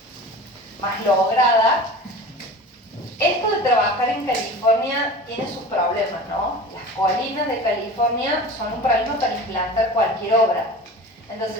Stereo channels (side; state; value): both; normal; correlation 0.36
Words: lograda. Esto de trabajar en California tiene sus problemas, ¿no? Las colinas de California son un problema para implantar cualquier obra.